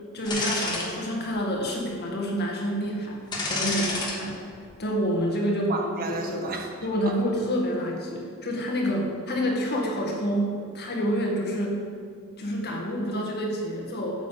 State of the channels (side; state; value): both; normal; correlation 0.40